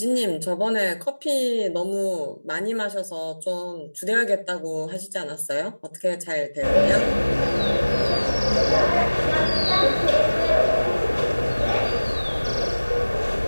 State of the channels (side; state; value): both; inverted; correlation -1.00